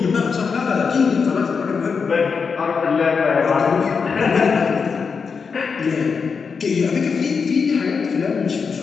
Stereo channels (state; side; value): quieter; right; 5.5 dB